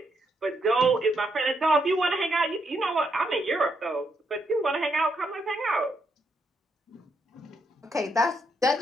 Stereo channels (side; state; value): both; normal; correlation 0.78